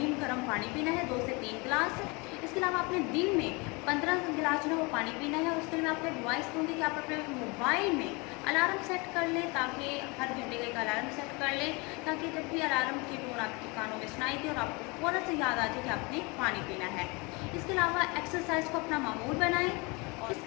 गर्म पानी पीना है 2 से 3 गिलास। इसके अलावा आपने दिन में 15 गिलास जो है वो पानी पीना है। उसके लिए मैं आपको एडवाइस दूँगी कि आप अपने मोबाइल में अलार्म सेट कर लें, ताकि हर घंटे का एक अलार्म सेट कर लें, ताकि जब भी अलार्म की टोन आपके कानों में सुनाई दे और आपको फ़ौरन से याद आ जाए कि आपने पानी पीना है। इसके अलावा एक्सरसाइज को अपना मामूल बनाएं। और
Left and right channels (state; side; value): quieter; right; 28.0 dB